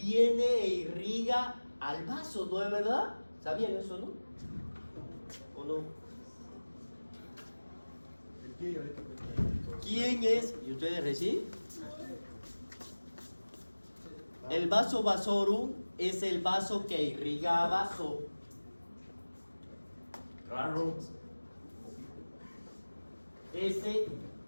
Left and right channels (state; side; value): inverted; both; correlation -1.00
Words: e irriga al vaso, ¿no es verdad? ¿Sabían eso, no? ¿O no? El pie diabético. ¿Quién es? ¿Y ustedes recién? El vaso vasorum es el vaso que irriga a vaso. Raro. Ese,